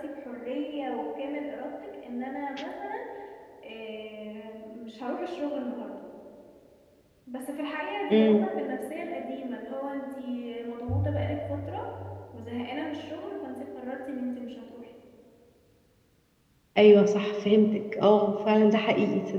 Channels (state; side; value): identical; both; correlation 1.00